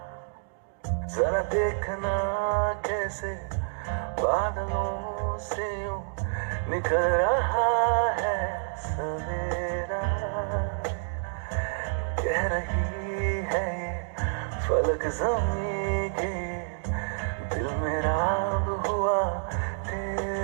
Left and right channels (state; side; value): silent; left; digital silence